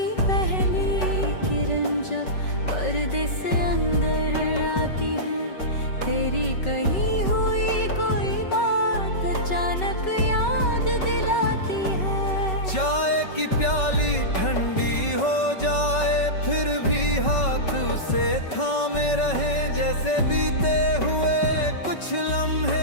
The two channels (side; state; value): right; late; 5.3 ms